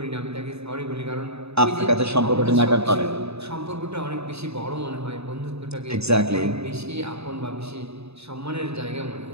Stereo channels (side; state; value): left; late; 0.79 ms